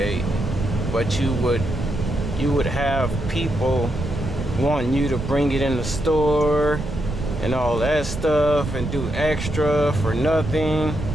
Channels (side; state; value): right; noise; rumble, 6 dB below the sound